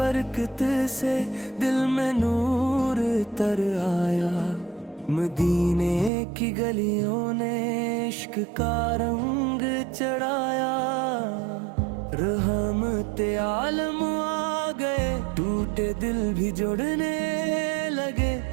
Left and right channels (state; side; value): drops out; left; at 6.1 s